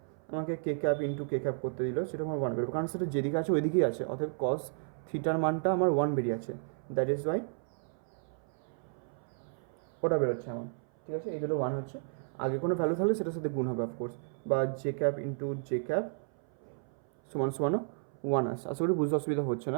আমাকে কে ক্যাপ ইন্টু কে ক্যাপ করতে দিল, সেটা আমার 1 বেরোবে, কারণ সেটা যেদিকে আছে ওই দিকেই আছে। অতএব কস থিটার মানটা আমার 1 বেরিয়ে আছে, দ্যাট ইজ ওয়াই ওটা বেরোচ্ছে আমার। ঠিক আছে, এই দুটো 1 হচ্ছে। আগে কোনো ভ্যালু থাকলে সেটার সাথে গুণ হবে অফকোর্স, বা J cap into J cap সমানও 1 আসছে। আশা করি বুঝতে অসুবিধা হচ্ছে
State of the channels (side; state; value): left; silent; 56 dB below the other